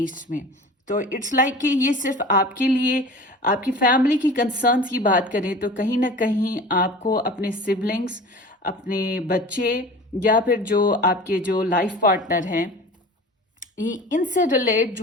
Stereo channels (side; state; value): both; normal; correlation 0.39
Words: में। तो इट्स लाइक कि ये सिर्फ आपके लिए, आपकी फैमिली की कंसर्न्स की बात करें तो कहीं ना कहीं आपको अपने सिबलिंग्स, अपने बच्चे या फिर जो आपके जो लाइफ पार्टनर हैं, इनसे रिलेट